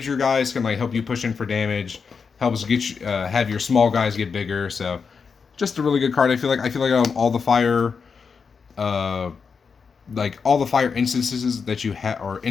your guys, can like help you push in for damage, helps get you, have your small guys get bigger. So just a really good card. I feel like all the fire, all the fire instances that you have or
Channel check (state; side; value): quieter; right; 5.6 dB